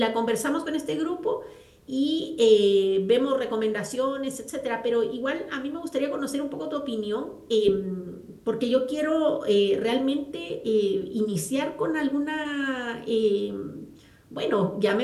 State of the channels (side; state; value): both; identical; correlation 1.00